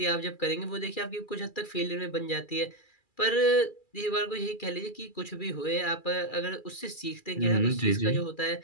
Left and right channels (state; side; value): late; right; 2.4 ms